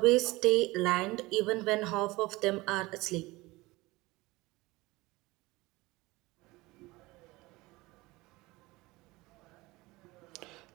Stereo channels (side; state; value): left; quieter; 21.1 dB